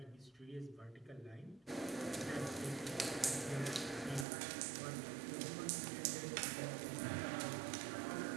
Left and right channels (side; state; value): left; drops out; at 4.2 s